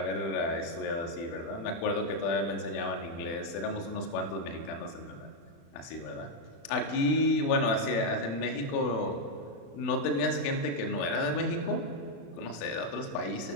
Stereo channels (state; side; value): late; right; 36 ms